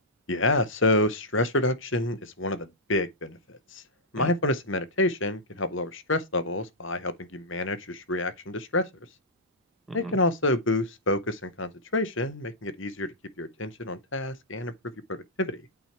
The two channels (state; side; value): normal; both; correlation -0.10